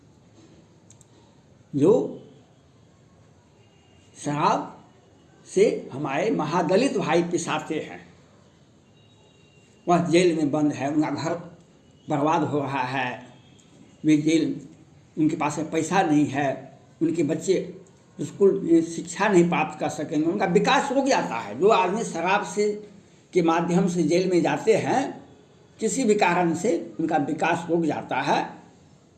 जो शराब से हमारे महादलित भाई पिसाते हैं, वह जेल में बंद है, उनका घर बर्बाद हो रहा है, वे जेल, उनके पास में पैसा नहीं है, उनके बच्चे स्कूल में शिक्षा नहीं प्राप्त कर सकेंगे, उनका विकास रुक जाता है। जो आदमी शराब से के माध्यम से जेल में जाते हैं, किसी भी कारण से उनका विकास रुक जाता है,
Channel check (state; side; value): identical; both; correlation 1.00